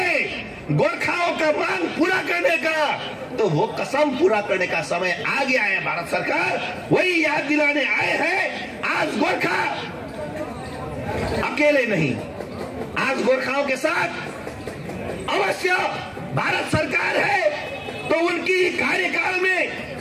गोरखाओं का मांग पूरा करने का, तो वो कसम पूरा करने का समय आ गया है। भारत सरकार वही याद दिलाने आए हैं। आज गोरखा अकेले नहीं, आज गोरखाओं के साथ अवश्य भारत सरकार है। तो उनकी कार्यकाल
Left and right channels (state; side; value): identical; both; correlation 1.00